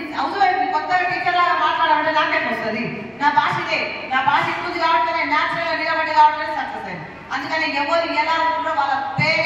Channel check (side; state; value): both; identical; correlation 1.00